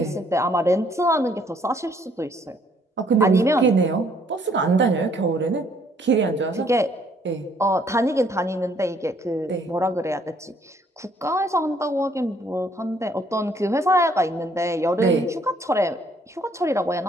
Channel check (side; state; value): both; normal; correlation 0.65